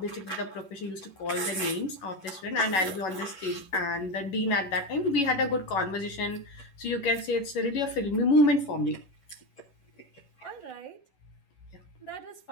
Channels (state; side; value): late; right; 11 ms